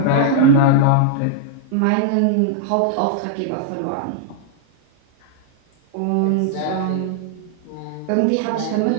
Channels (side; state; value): both; different; correlation -0.01